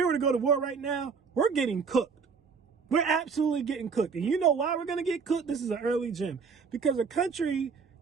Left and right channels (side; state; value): left; quieter; 5.5 dB